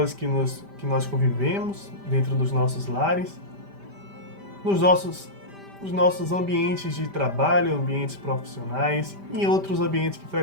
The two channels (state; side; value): late; left; 5.1 ms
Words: que nós convivemos dentro dos nossos lares, nos nossos ambientes de trabalho, ambientes profissionais e outros ambientes que